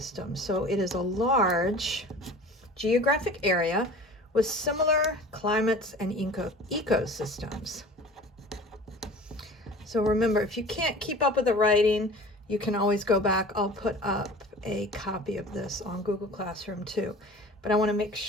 So it is a large geographic area with similar climates and ecosystems. So remember, if you can't keep up with the writing, you can always go back. I'll put up a copy of this on Google Classroom too. But I want to make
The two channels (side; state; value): both; normal; correlation 0.41